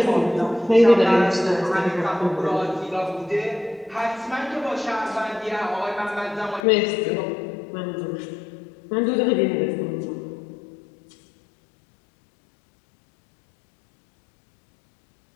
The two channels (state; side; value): drops out; right; at 6.6 s